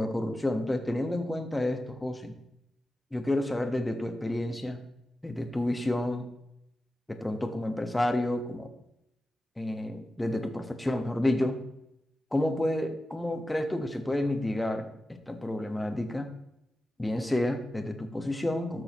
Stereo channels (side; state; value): both; normal; correlation 0.93